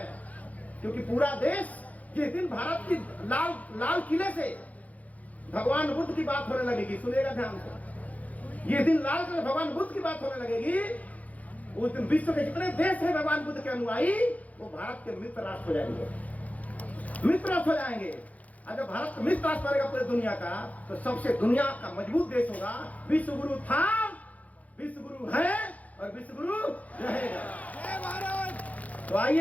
क्योंकि पूरा देश, जिस दिन भारत की लाल किले से भगवान बुद्ध की बात होने लगेगी, सुनिएगा ध्यान से, जिस दिन लाल किले भगवान बुद्ध की बात होने लगेगी, उस दिन विश्व के जितने देश हैं भगवान बुद्ध के अनुयायी, वो भारत के मित्र राष्ट्र हो जाएंगे, मित्र राष्ट्र हो जाएंगे। और जब भारत मिस पास करेगा पूरे दुनिया का, तो सबसे दुनिया का मजबूत देश होगा। विश्व गुरु था, विश्व गुरु है और विश्व गुरु रहेगा। तो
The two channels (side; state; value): right; late; 0.072 ms